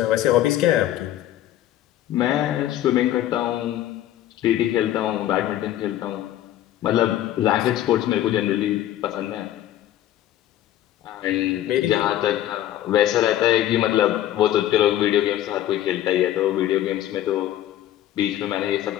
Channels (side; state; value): right; quieter; 12.8 dB